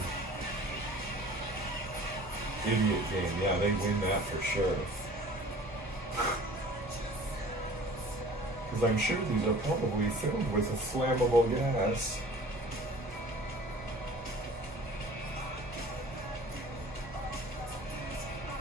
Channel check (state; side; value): normal; both; correlation 0.46